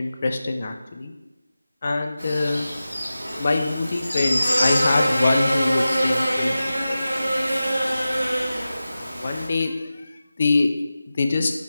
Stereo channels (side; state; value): both; inverted; correlation -0.94